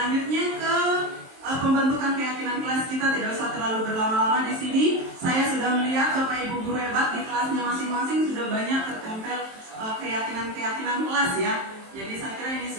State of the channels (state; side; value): late; left; 23 ms